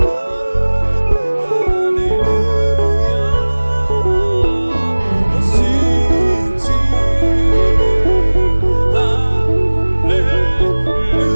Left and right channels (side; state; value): both; inverted; correlation -1.00